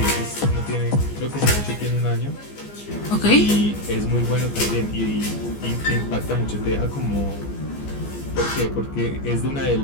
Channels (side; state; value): right; late; 14 ms